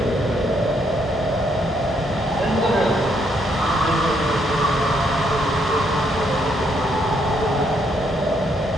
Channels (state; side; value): normal; both; correlation 0.73